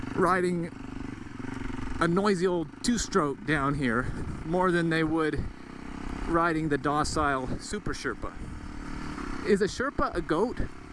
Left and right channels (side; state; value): both; identical; correlation 1.00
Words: riding a noisy old 2-stroke down here more than they would riding the docile Super Sherpa. Is a Sherpa a goat?